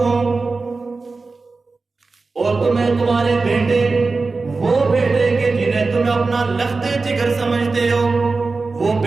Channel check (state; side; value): quieter; left; 3.9 dB